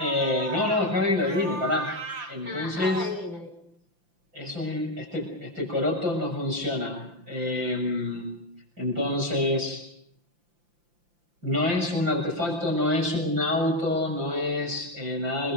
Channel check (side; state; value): left; late; 5.8 ms